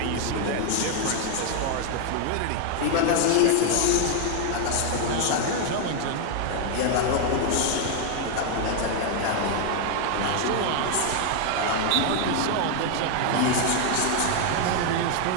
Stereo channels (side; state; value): both; different; correlation 0.00